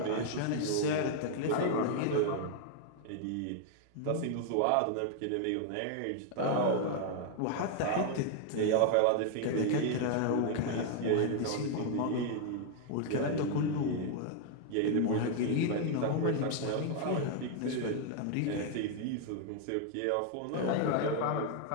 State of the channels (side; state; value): both; different; correlation 0.00